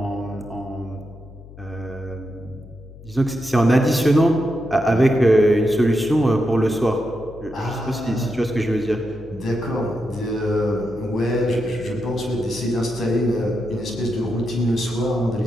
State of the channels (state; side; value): noise; left; hum, 18 dB below the sound